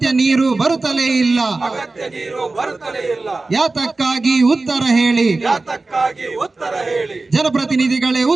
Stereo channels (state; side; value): quieter; left; 3.4 dB